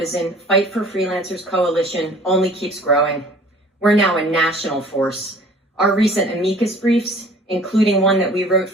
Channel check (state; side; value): normal; both; correlation 0.49